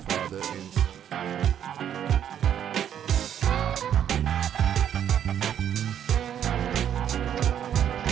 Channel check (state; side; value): quieter; left; 9.6 dB